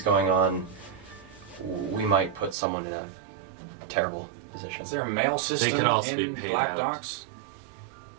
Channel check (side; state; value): left; drops out; at 2.6 s